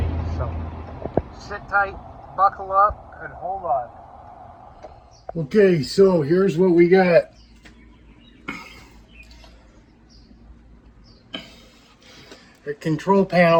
So sit tight, buckle up, and hold on. Okay, so here's what we got. The control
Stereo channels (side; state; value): both; identical; correlation 1.00